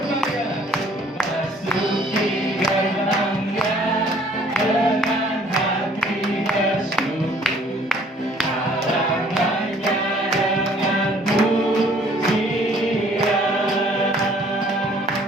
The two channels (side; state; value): both; normal; correlation 0.57